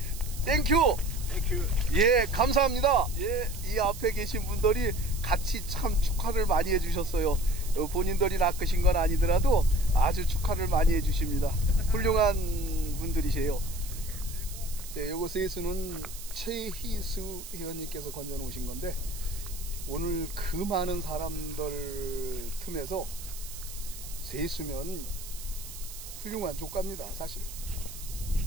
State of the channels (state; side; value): noise; right; hiss, 12 dB below the sound